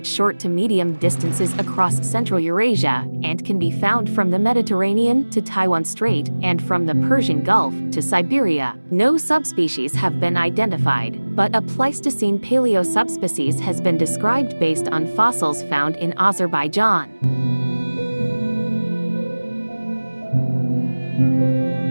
short to medium distances across Central Eurasia and can be found from the Mediterranean to Taiwan Strait and from the Persian Gulf to Siberia. No subspecies have been identified, but a Pleistocene paleosubspecies has been described based on fossils found in Azerbaijan.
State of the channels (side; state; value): both; inverted; correlation -1.00